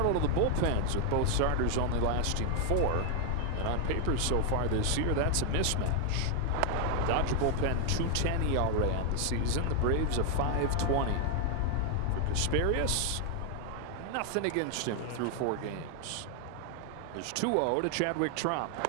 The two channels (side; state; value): both; different; correlation 0.00